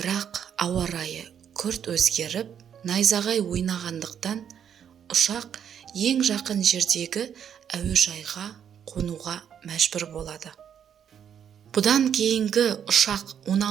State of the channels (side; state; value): left; quieter; 8.6 dB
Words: ауа райы күрт өзгеріп, найзағай ойнағандықтан ұшақ ең жақын жердегі әуежайға қонуға мәжбүр болады. Бұдан кейінгі ұшақ